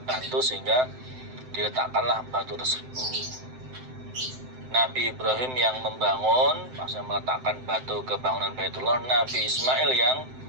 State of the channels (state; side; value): late; left; 7.8 ms